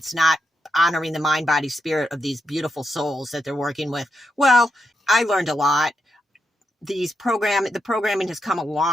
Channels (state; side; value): normal; both; correlation 0.83